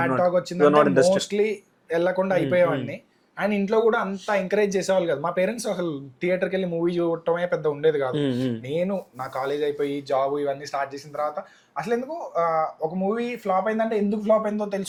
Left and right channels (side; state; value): both; identical; correlation 1.00